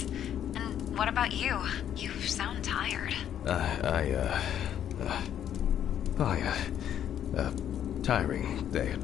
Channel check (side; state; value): right; quieter; 10.0 dB